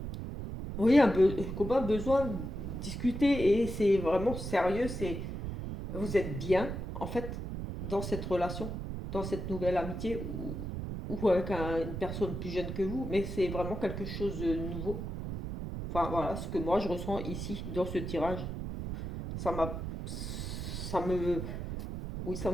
oui comme un besoin de discuter et c'est vraiment sérieux. C'est vous êtes bien, en fait, dans cette relation, dans cette nouvelle amitié, ou avec une personne plus jeune que vous, mais c'est vraiment quelque chose de nouveau. Enfin, voilà, ce que moi je ressens ici, dans ce tirage. Ça m'a. Ça me. Oui,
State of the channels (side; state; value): right; noise; rumble, 5 dB below the sound